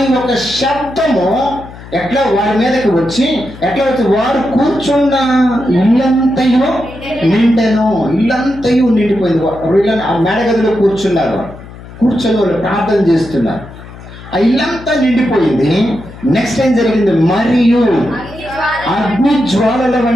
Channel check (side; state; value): left; noise; hum, 17 dB below the sound